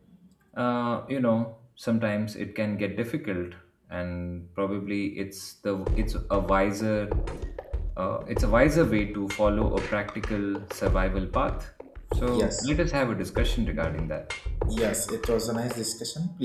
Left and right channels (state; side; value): identical; both; correlation 1.00